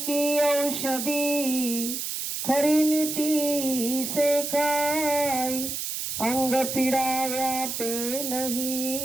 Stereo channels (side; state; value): right; noise; hiss, 4 dB below the sound